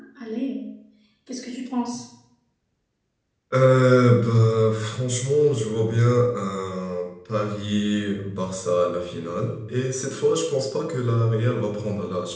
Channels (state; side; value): identical; both; correlation 1.00